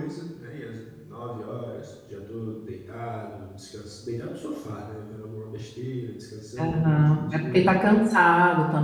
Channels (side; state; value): both; identical; correlation 1.00